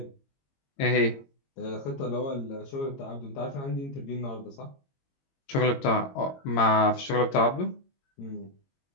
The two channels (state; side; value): late; right; 22 ms